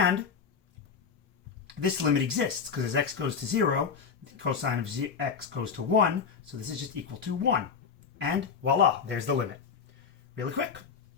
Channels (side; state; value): right; quieter; 6.1 dB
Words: this limit exists because as x goes to 0, the cosine of x goes to 1. So this is just equal to 1. And voila, there's the limit. Really quick,